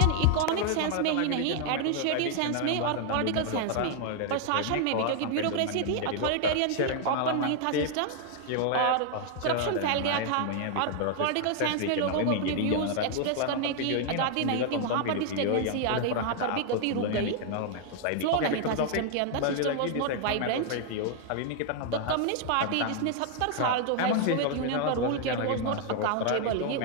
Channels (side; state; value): both; different; correlation 0.00